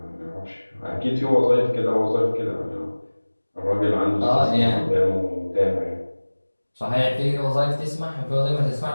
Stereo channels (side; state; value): both; inverted; correlation -1.00